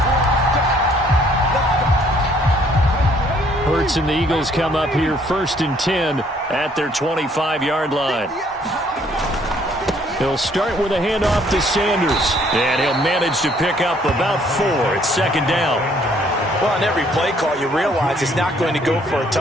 Hurts and the Eagles come up here 1st and 10 at their 25-yard line. He'll start with a handoff to Sanders. And he'll manage to pick up about 4. It's second down. Well, on every play call, you realize it's not going to go for a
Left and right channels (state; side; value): normal; both; correlation 0.63